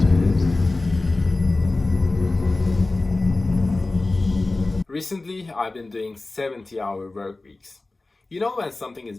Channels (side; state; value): right; quieter; 3.2 dB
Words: Recently, I've been doing 70-hour work weeks. You know when something is